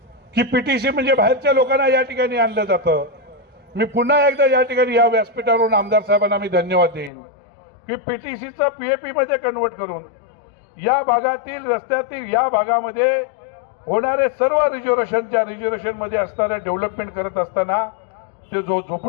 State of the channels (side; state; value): right; drops out; at 7.1 s